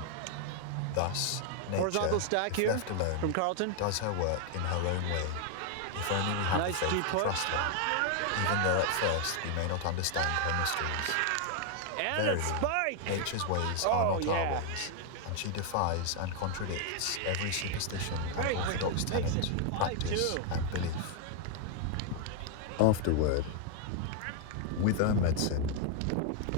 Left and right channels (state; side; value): different; both; correlation 0.00